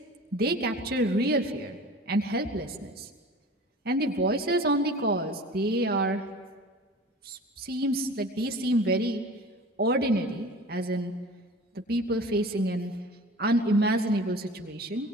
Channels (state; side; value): normal; both; correlation 0.40